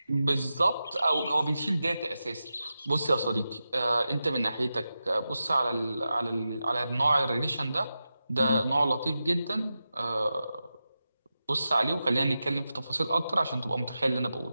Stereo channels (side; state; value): both; inverted; correlation -0.91